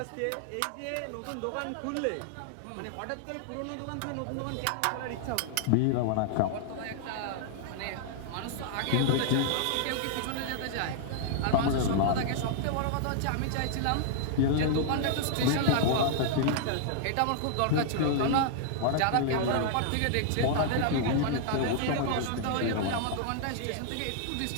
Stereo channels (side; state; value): both; different; correlation -0.01